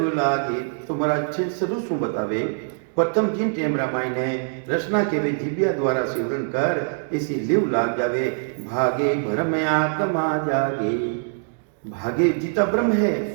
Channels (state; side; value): silent; left; digital silence